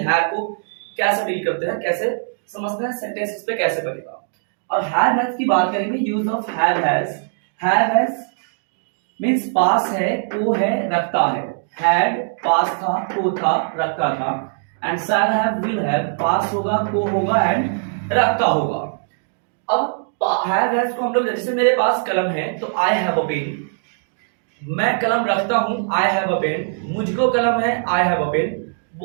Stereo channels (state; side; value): silent; left; digital silence